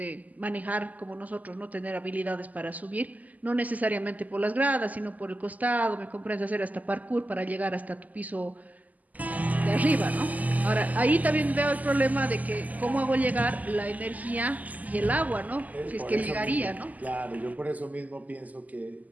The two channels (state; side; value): late; left; 0.079 ms